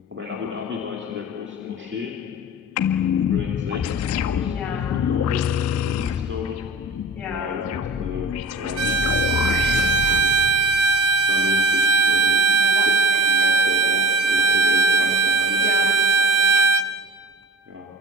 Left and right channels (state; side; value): normal; both; correlation 0.37